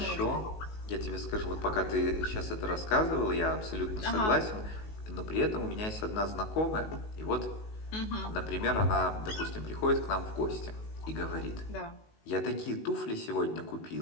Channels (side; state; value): right; late; 19 ms